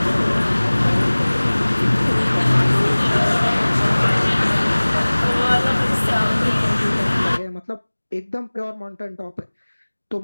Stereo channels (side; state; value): both; inverted; correlation -1.00